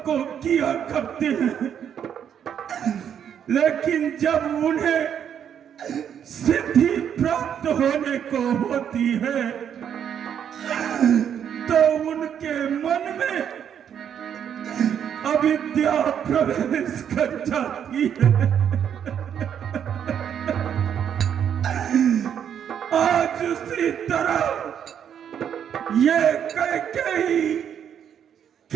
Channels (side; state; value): left; quieter; 8.7 dB